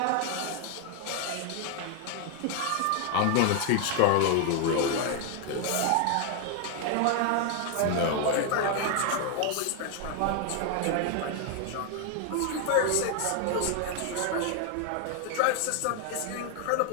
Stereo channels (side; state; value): both; different; correlation 0.00